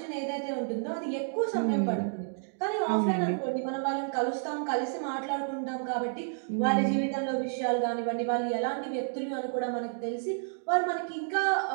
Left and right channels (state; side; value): silent; left; digital silence